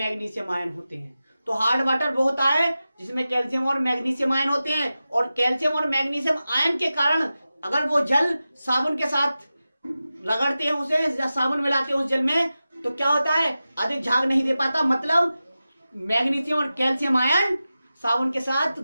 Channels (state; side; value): inverted; both; correlation -0.94